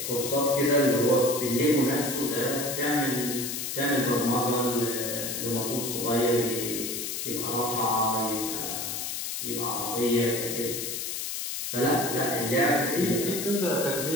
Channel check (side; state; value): left; noise; hiss, 4 dB below the sound